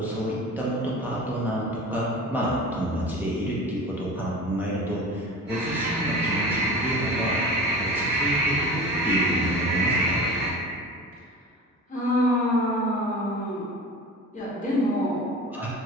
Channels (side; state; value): both; normal; correlation 0.36